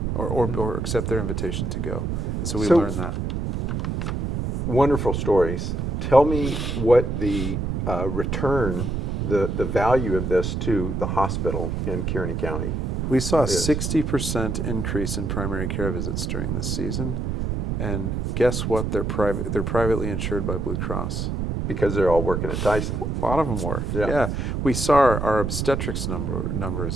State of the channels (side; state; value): right; noise; rumble, 1 dB below the sound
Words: or accept their invitation to go. And so we learned that. Wonderful stories. Tell me what the return, the value of this to the hospital in Kearney County. We saw a 60% increase in primary care visits during this season. And guess what? They're privately insured by Blue Cross. Because they're all working at Tyson. A lot of them were. Yeah. We saw our obstetrics